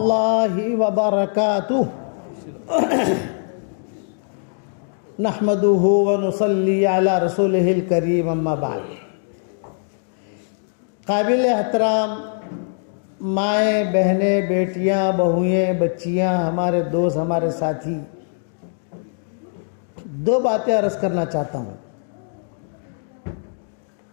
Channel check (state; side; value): silent; right; digital silence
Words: وبرکاتہ نحمدہ ونصلی علی رسولہ الکریم اما بعد۔ قابل احترام مائیں، بہنیں، بیٹیاں، بہوئیں، بچیاں، ہمارے دوست، ہمارے ساتھی، دو باتیں عرض کرنا چاہتا ہوں۔